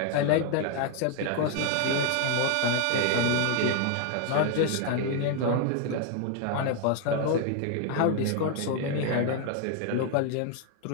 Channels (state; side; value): different; both; correlation 0.00